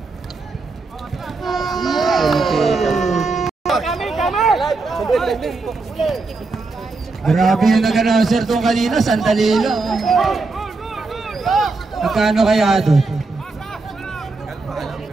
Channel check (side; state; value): left; quieter; 3.8 dB